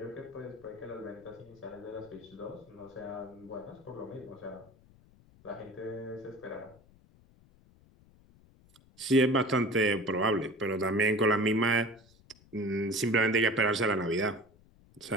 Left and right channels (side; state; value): left; noise; rumble, 27 dB below the sound